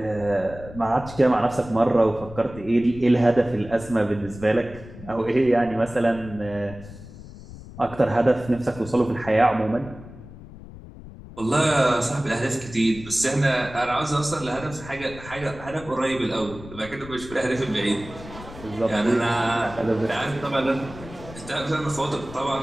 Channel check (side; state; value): left; noise; rumble, 16 dB below the sound